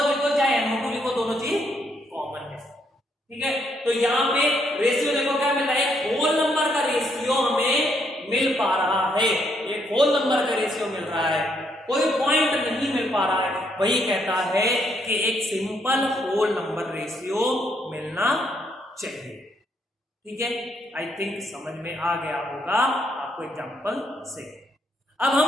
लिखो चाहे NO2 लिखो, दोनों चीज कॉमन है, ठीक है। तो यहाँ पे रेशियो देखो क्या मिल रहा है, एक होल नंबर का रेशियो हमें मिल पा रहा है, एक होल नंबर का रेशियो मिल रहा है, कोई पॉइंट नहीं मिल पा रहा है, वही कहता है कि एक सिंपल होल नंबर रेशियो मिलना चाहिए, ठीक है। आई थिंक समझ में आ गया होगा आपको एग्जांपल से। अब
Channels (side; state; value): both; normal; correlation 0.73